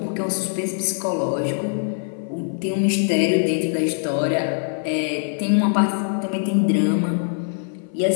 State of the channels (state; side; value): silent; right; 57 dB below the other